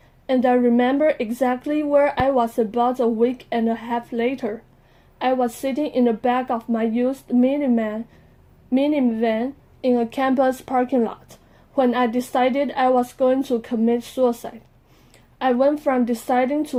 and I remember exactly where I was about a week and a half later. I was sitting in the back of my used minivan in a campus parking lot when I decided I was going to commit suicide. I went from deciding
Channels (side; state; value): both; identical; correlation 1.00